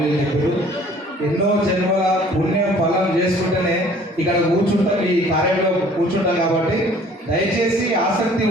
చెప్పారు. ఎన్నో జన్మల పుణ్యం ఫలం చేసుకుంటేనే ఇక్కడ కూర్చుంటాం, ఈ కార్యంలో కూర్చుంటాం. కాబట్టి దయచేసి ఆసక్తి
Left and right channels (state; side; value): normal; both; correlation 0.53